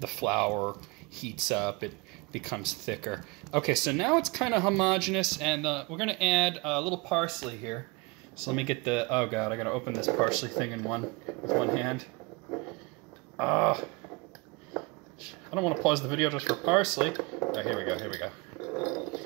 heats up, it becomes thicker. Okay, so now it's kind of homogeneous, and we're going to add a little parsley here. So let me get the... Oh god, I got to open this parsley thing with one hand. I don't want to pause the video just for parsley. Oh, here we go, here we go.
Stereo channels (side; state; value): left; quieter; 26.3 dB